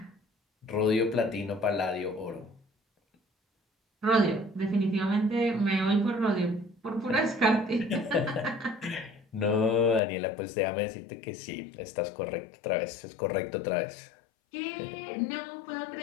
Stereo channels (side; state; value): right; drops out; at 10.0 s